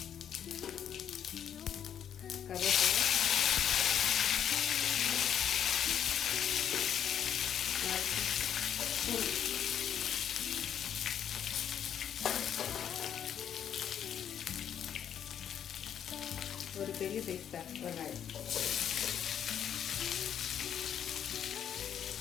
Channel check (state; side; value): quieter; right; 9.2 dB